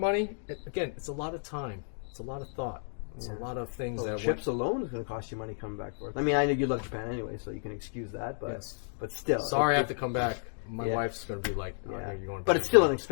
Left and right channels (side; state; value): right; silent; digital silence